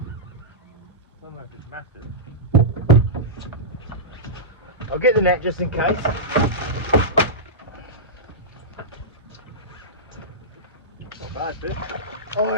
don't know if it's massive. I'll get the net just in case. Bad fish.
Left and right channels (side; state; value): both; normal; correlation -0.14